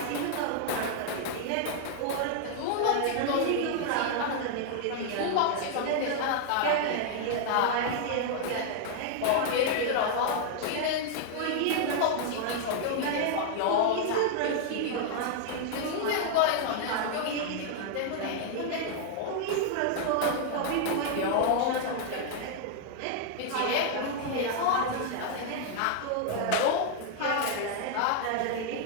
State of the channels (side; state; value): both; different; correlation -0.01